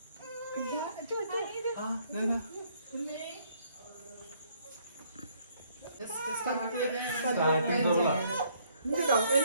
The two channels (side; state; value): both; inverted; correlation -0.66